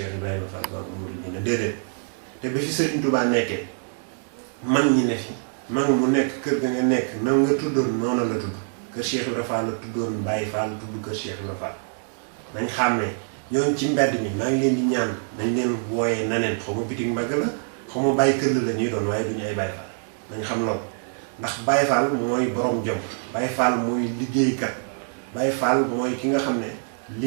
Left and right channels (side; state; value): left; silent; digital silence